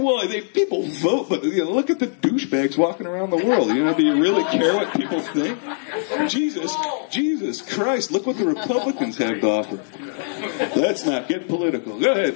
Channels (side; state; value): right; silent; digital silence